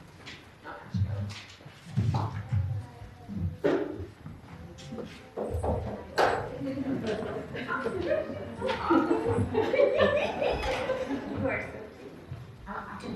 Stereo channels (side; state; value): both; identical; correlation 1.00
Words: course. I can